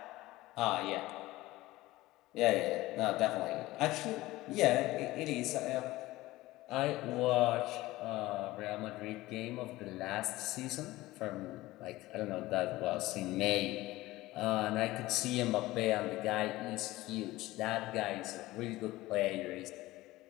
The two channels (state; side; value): quieter; right; 18.1 dB